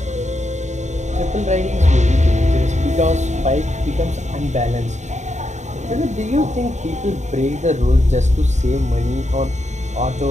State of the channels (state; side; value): late; left; 0.34 ms